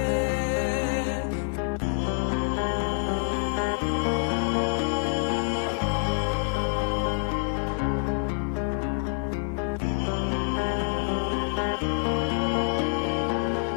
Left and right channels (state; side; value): silent; right; digital silence